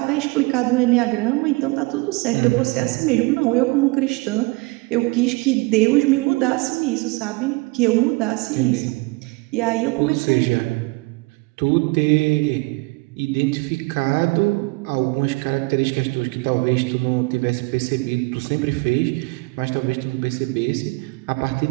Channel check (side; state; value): left; quieter; 25.8 dB